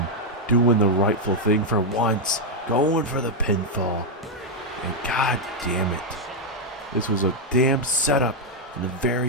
doing the rightful thing for once, going for the pinfall. And god damn it, this was a damn setup in the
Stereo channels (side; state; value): both; normal; correlation 0.00